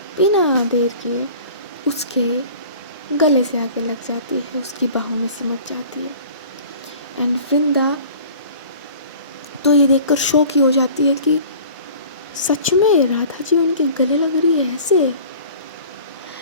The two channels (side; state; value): both; inverted; correlation -0.45